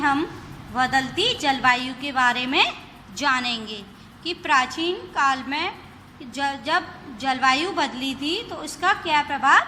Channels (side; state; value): both; identical; correlation 1.00